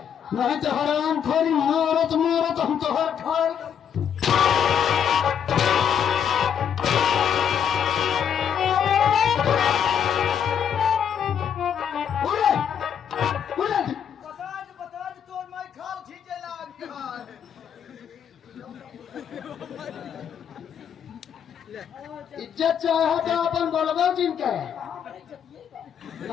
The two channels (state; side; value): quieter; right; 8.2 dB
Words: नहीं तो हराम खोरी मारत मारत हम तो हर खाए। इज्जत चाहे तो अपन बोलबो जिनके